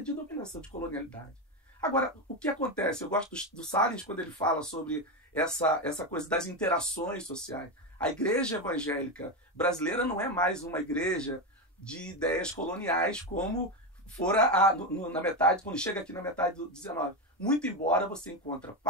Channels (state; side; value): normal; both; correlation 0.12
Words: dominação, de colonialidade. Agora, o que acontece? Eu gosto do Salins quando ele fala sobre essa coisa das interações sociais. A igreja evangélica brasileira não é mais uma igreja de ideias coloniais como fora na metade, quando chega aqui na metade do 19. Muito embora você encontre